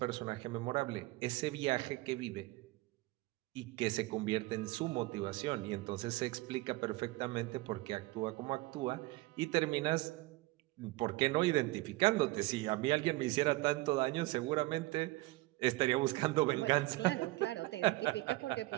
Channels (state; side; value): quieter; left; 20.4 dB